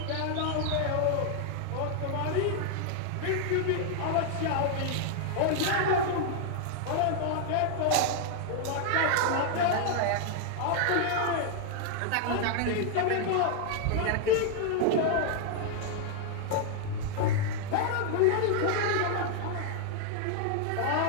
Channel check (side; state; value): both; different; correlation 0.00